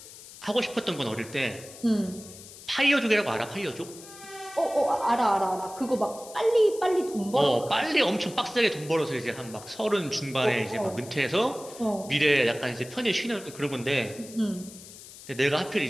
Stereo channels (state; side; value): noise; left; hiss, 17 dB below the sound